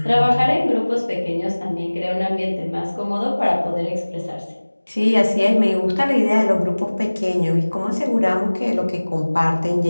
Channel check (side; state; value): both; inverted; correlation -1.00